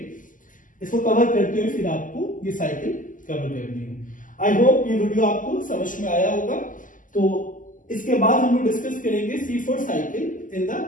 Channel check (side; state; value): right; late; 0.38 ms